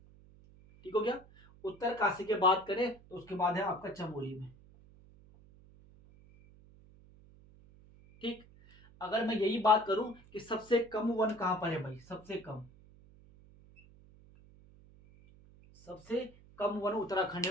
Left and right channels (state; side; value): noise; right; hum, 24 dB below the sound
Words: ठीक हो गया। उत्तरकाशी के बात करें तो उसके बाद है आपका चमोली में, ठीक। अगर मैं यही बात करूं कि सबसे कम वन कहां पर है भाई, सबसे कम, सबसे कम वन उत्तराखंड